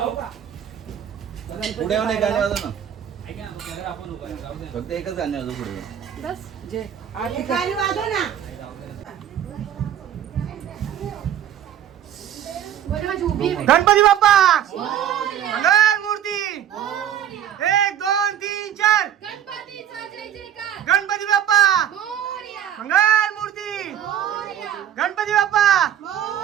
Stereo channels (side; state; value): left; quieter; 10.2 dB